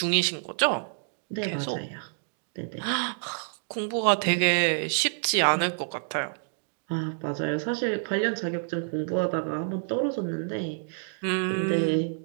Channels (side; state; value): left; silent; digital silence